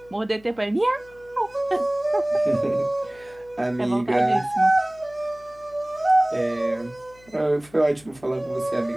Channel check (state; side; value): noise; left; hum, 26 dB below the sound